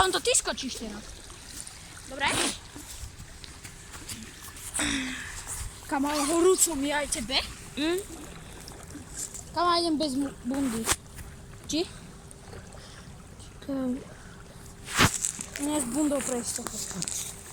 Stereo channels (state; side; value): identical; both; correlation 1.00